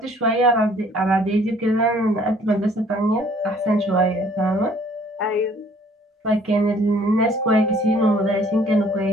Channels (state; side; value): normal; both; correlation 0.58